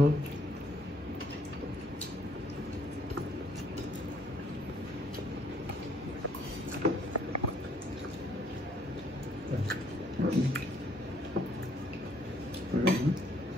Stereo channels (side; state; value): both; normal; correlation 0.65